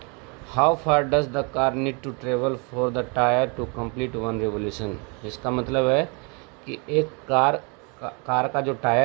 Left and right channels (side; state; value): left; quieter; 33.3 dB